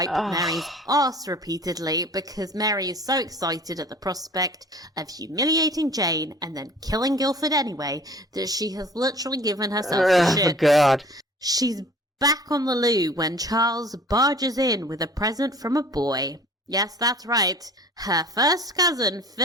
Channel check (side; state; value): both; normal; correlation 0.47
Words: Mary's arse repeatedly because Mary is so excited at the prospect of humiliating Jane and then killing Guilford anyway that she has literally given herself the shit. Oh, God. She's back on the loo when Charles barges in with a present from a boy. Yes, that's right. Her first cousin,